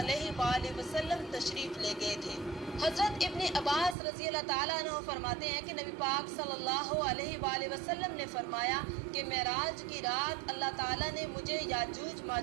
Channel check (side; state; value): left; drops out; at 4.0 s